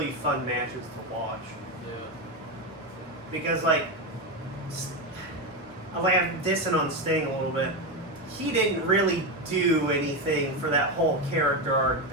fun matches to watch. Yeah. Because like I'm dissing on Sting a little bit. He didn't really do anything for that whole character arc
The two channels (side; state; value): both; normal; correlation 0.12